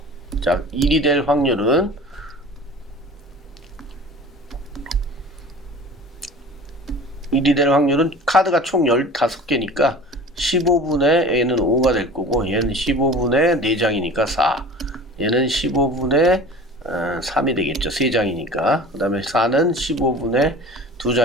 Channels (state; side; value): normal; both; correlation 0.40